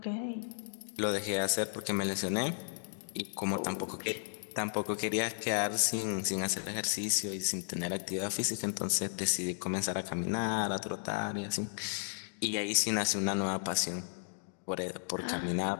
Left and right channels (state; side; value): silent; right; digital silence